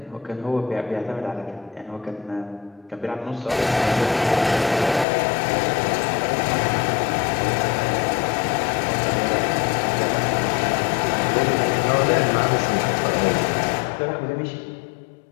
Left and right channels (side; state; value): right; drops out; at 5.1 s